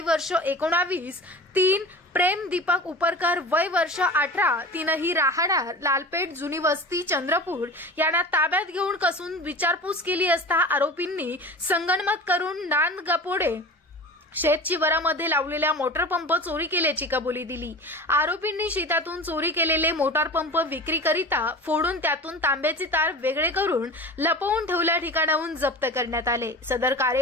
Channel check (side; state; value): both; normal; correlation 0.34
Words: वर्ष 19, 3 प्रेम दीपक उपरकर वय वर्ष 18 तीनही राहणार लालपेठ जुनी वस्ती चंद्रपूर यांना ताब्यात घेऊन कसून विचारपूस केली असता आरोपींनी संगनमत करून नांदगावपोळे शेतशिवारामध्ये लावलेल्या मोटार पंप चोरी केल्याची कबुली दिली। आरोपींनी शेतातून चोरी केलेले मोटार पंप विक्रीकरिता फोडून त्यातून तांब्याचे तार वेगळे करून लपवून ठेवल्या ठिकाणाहून जप्त करण्यात आले। सदर